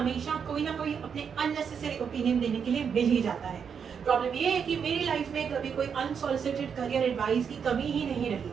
कोई ना कोई अपने अननेसेसरी ओपिनियन देने के लिए मिल ही जाता है। प्रॉब्लम ये है कि मेरी लाइफ में कभी कोई अनसॉलिसिटेड करियर एडवाइस की कमी ही नहीं रही।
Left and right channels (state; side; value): quieter; left; 6.9 dB